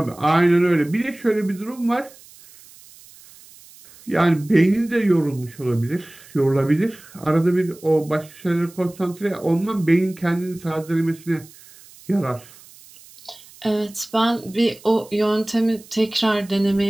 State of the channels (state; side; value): noise; right; hiss, 23 dB below the sound